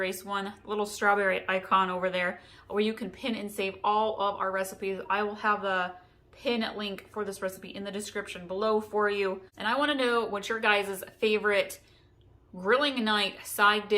one, little strawberry icon over there, where you can pin and save all of our recipes. I will have the pin link for this recipe in the description below for you. And I want to know what your guys' favorite grilling night side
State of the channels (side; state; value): both; identical; correlation 1.00